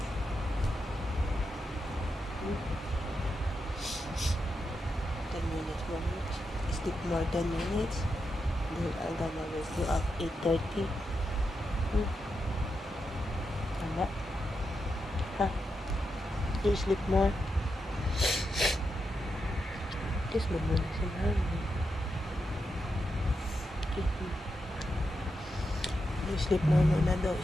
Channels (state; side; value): normal; both; correlation 0.86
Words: 10 minutes more. Sleep more 10 minutes. Then I'm gonna wake you up 8:30. Tama? Ha? You sleep more? Kiss mo muna si mami. You sleep more muna daw